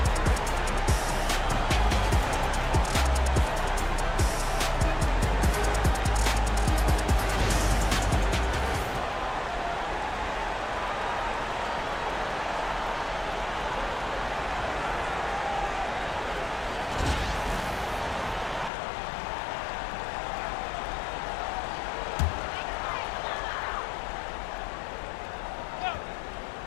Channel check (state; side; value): drops out; right; at 18.7 s